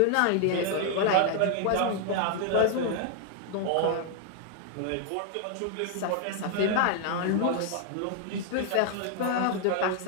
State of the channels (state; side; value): different; both; correlation 0.00